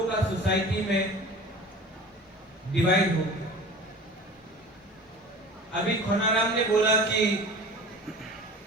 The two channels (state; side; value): normal; both; correlation 0.39